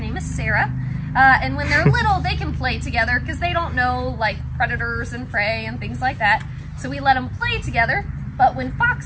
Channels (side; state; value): both; identical; correlation 1.00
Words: name is Sarah. And when they're little, they can play together because they don't know like predators and prey and things like that. So we let them play together. But when